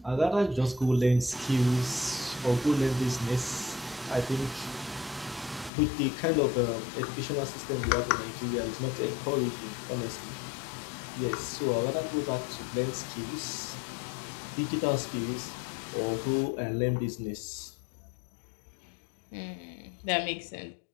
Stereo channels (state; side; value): drops out; right; at 5.7 s